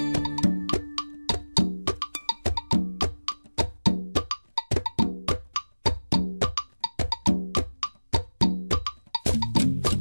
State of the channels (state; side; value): inverted; both; correlation -1.00